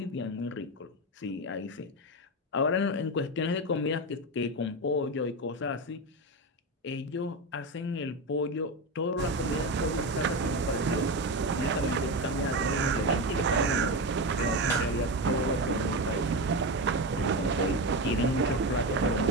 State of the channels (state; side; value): normal; both; correlation 0.17